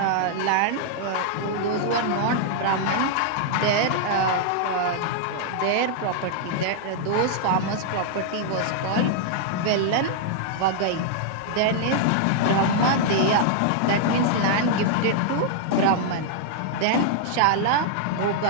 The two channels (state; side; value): different; both; correlation -0.01